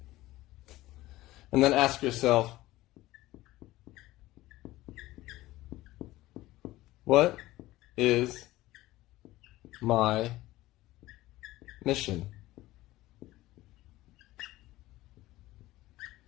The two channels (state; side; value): quieter; right; 17.3 dB